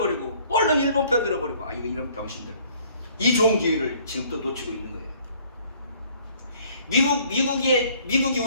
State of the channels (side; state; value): both; inverted; correlation -0.58